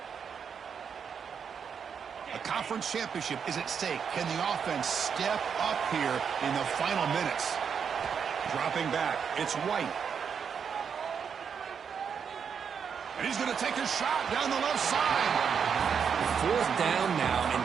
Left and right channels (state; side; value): quieter; left; 6.9 dB